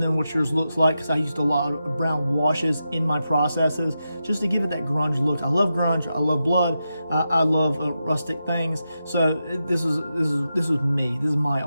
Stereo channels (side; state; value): both; inverted; correlation -0.88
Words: what yours looks like, because I used a lot of brown washes in my processes just to give it that grunge look. I love grunge, I love blood, I love rustic things. So this is me, this is my